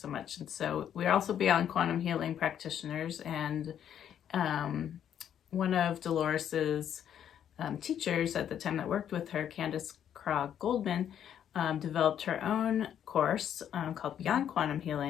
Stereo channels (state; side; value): quieter; right; 9.6 dB